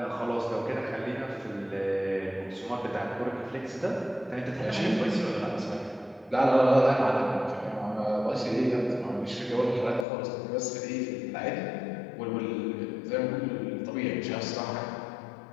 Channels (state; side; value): drops out; right; at 10.1 s